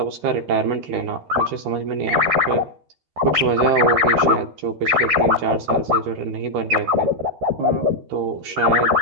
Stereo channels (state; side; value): late; left; 13 ms